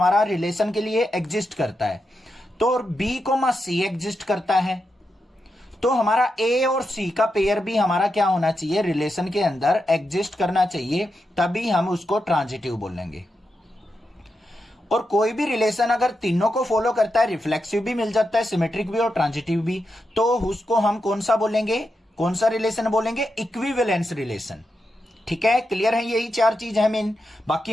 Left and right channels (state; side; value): normal; both; correlation 0.87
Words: रिलेशन के लिए एग्जिस्ट करता है, तो बी, सी एग्जिस्ट करता है, तो हमारा ए और सी का पेयर भी हमारा क्या होना चाहिए, रिलेशन के अंदर एग्जिस्ट करना चाहिए, तभी हम उसको ट्रांजिटिव बोलेंगे। और कोई भी रिलेशन अगर तीनों को फॉलो करता है, रिफ्लेक्सिव भी मिल जाता है, सिमेट्रिक भी और ट्रांजिटिव भी, तो उसको हम कौन सा बोलेंगे, कौन सा रिलेशन बोलेंगे, इक्विवेलेंस रिलेशन। ठीक है, क्लियर है। यही चार चीज है मेन,